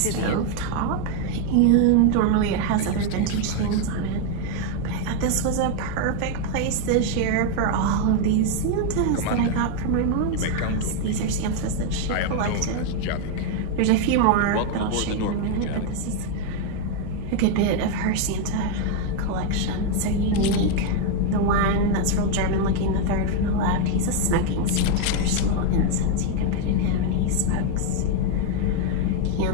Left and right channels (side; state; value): both; different; correlation 0.01